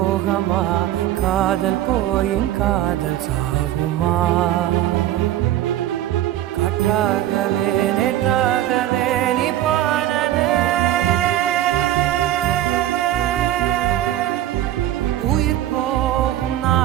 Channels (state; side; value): quieter; left; 13.1 dB